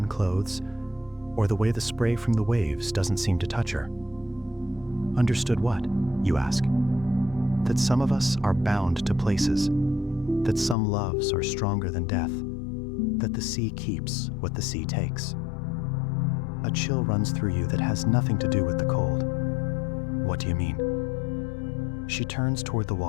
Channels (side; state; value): right; drops out; at 10.8 s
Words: clothes, or the way the spray from the waves doesn't seem to touch her. "Understood what?" you ask. "That some of us are bound to places, that some loves are stronger than death, that the sea keeps what the sea takes." A chill runs through you that has nothing to do with the cold. "What do you mean?" She turns toward the